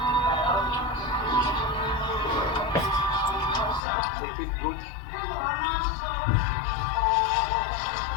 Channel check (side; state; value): right; drops out; at 3.8 s